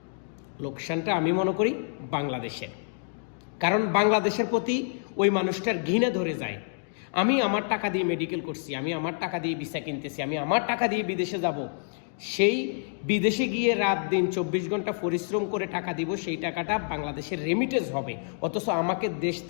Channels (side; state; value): right; silent; digital silence